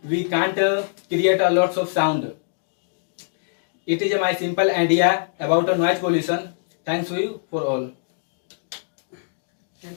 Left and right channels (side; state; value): right; silent; digital silence